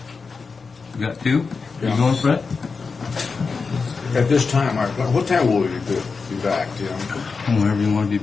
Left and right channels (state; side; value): quieter; right; 4.8 dB